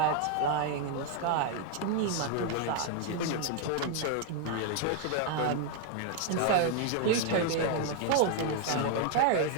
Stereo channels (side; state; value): both; different; correlation 0.00